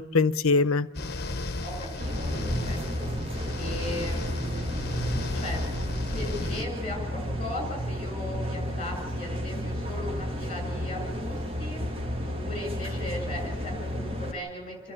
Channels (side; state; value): both; normal; correlation 0.50